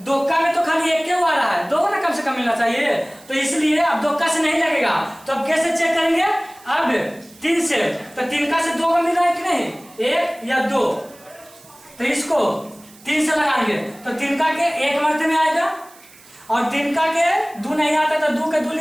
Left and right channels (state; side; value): noise; right; hiss, 24 dB below the sound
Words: दुक्का में तो खाली एक क्यों आ रहा है, 2 ना कम से कम मिलना चाहिए। तो इसलिए अब दुक्का से नहीं लगेगा। तो अब कैसे चेक करेंगे? अब 3 से, तो 3 का से 2 को मिल रहा है कि नहीं? 1 या 2। तो इसको 3 से लगाएंगे तो 3 का के 1 मरते में आएगा, और 3 का के 2 नहीं आता तो 2 के 2